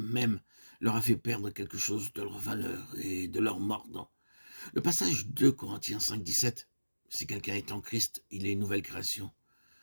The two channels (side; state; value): both; inverted; correlation -1.00